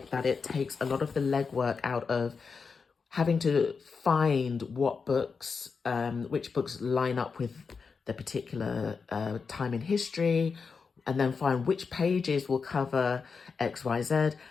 that it takes a lot of the legwork out of having to find what books, which books line up with the particular time in history, and then find which pages will cover X, Y, Z.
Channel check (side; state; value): right; quieter; 5.2 dB